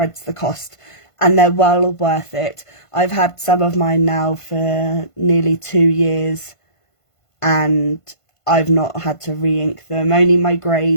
the cost, and they're well worth it. I've had some of mine now for nearly 2 years and I've not had to re-ink them. Only my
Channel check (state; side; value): late; right; 1.5 ms